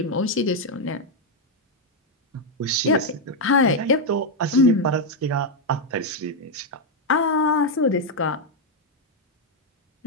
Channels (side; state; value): both; normal; correlation 0.01